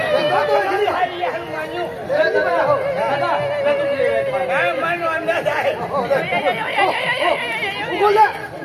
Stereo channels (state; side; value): identical; both; correlation 1.00